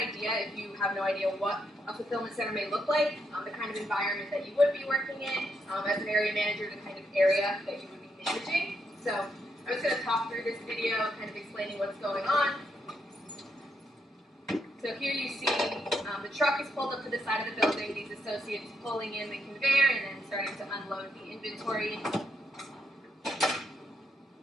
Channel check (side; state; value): both; normal; correlation 0.79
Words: if you have no idea what a fulfillment center may look like, the kind of environment that you would be working in, as an area manager, the kind of area that you would be managing. So I'm just going to talk through this video, kind of explaining what's going on. So here you see the truck is pulled up to the side of the building, these associates pulling in the conveyor and then starting to unload the inventory.